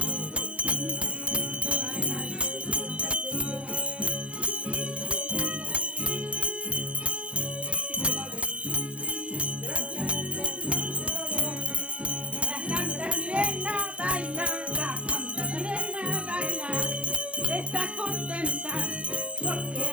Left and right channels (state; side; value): late; left; 0.061 ms